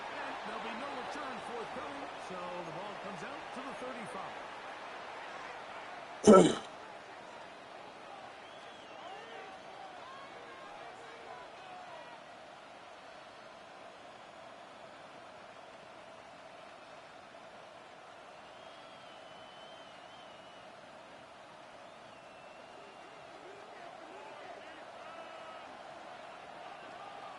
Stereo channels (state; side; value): identical; both; correlation 1.00